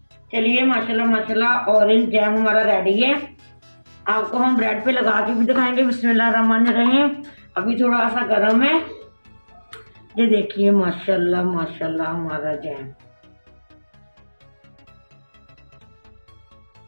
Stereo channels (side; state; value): both; inverted; correlation -1.00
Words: चलिए माशाल्लाह माशाल्लाह ऑरेंज जैम हमारा रेडी है। आपको हम ब्रेड पे लगा के भी दिखाएंगे। बिस्मिल्लाहिर्रहमानिर्रहीम। अभी थोड़ा सा गर्म है। ये देखिए माशाल्लाह माशाल्लाह हमारा जैम।